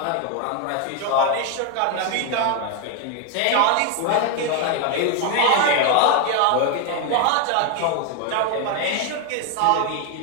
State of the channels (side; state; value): both; different; correlation 0.01